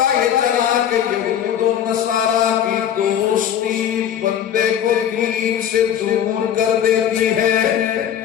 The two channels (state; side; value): quieter; right; 9.6 dB